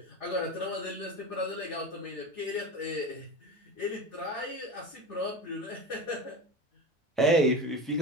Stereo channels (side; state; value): both; normal; correlation 0.27